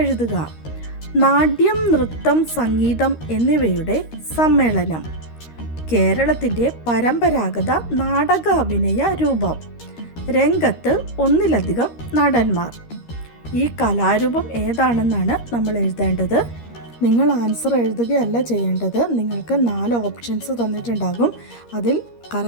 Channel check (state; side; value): late; right; 13 ms